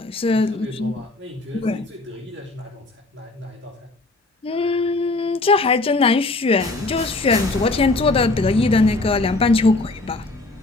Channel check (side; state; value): right; quieter; 3.1 dB